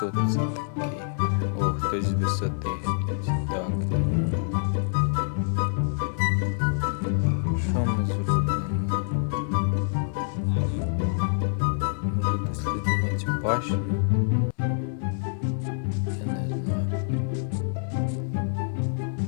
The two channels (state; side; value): silent; right; digital silence